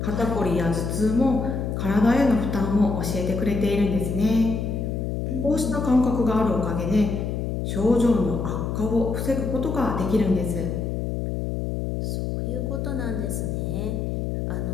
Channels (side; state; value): left; noise; hum, 2 dB below the sound